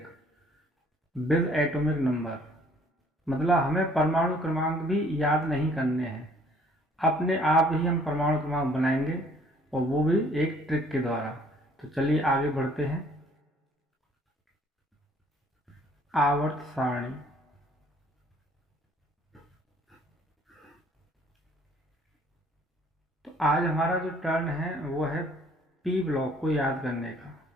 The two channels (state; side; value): normal; both; correlation 0.59